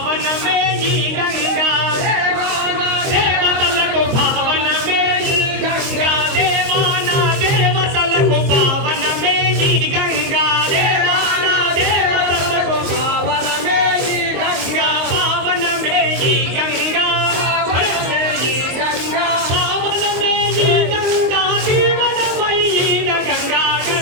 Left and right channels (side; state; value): left; late; 23 ms